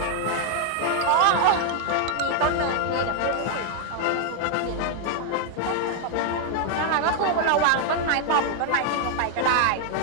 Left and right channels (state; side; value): different; both; correlation 0.00